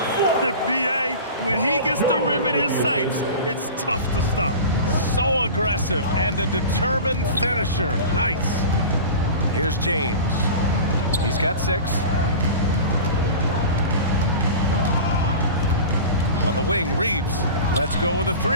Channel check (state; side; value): inverted; both; correlation -0.33